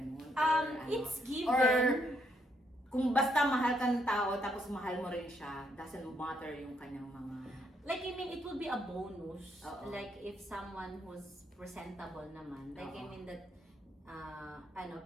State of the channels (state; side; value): normal; both; correlation 0.74